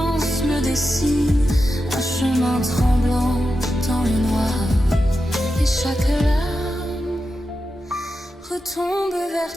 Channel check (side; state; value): both; normal; correlation 0.89